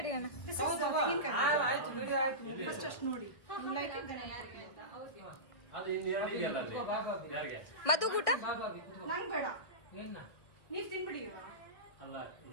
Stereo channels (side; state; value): right; late; 1.6 ms